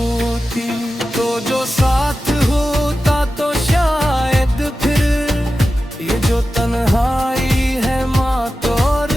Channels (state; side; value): normal; both; correlation 0.93